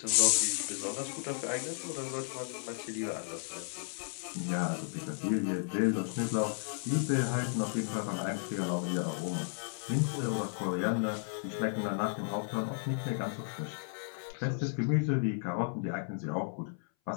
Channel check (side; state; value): right; silent; 55 dB below the other